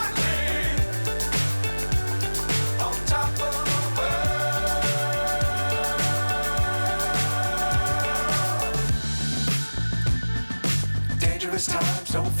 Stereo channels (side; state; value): both; inverted; correlation -1.00